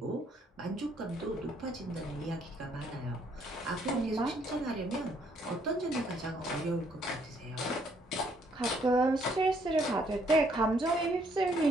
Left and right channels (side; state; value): both; normal; correlation 0.68